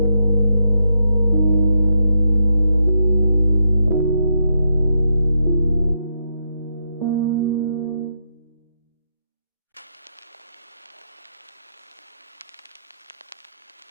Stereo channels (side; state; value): both; inverted; correlation -0.81